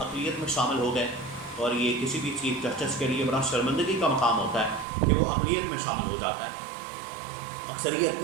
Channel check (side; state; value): left; drops out; at 4.9 s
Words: में शामिल हो गए और ये किसी भी चीफ जस्टिस के लिए बड़ा शर्मिंदगी का मकाम होता है कि वो अक़लियत में शामिल हो जाता है, अक्सरियत